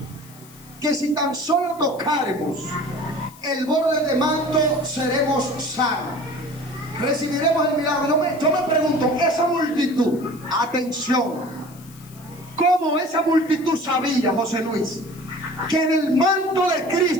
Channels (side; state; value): left; noise; hiss, 23 dB below the sound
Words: que si tan solo tocáremos el borde de manto seremos sanos, recibiremos el milagro. Yo me pregunto, esa multitud, atención, ¿cómo esa multitud sabía, José Luis, que del manto de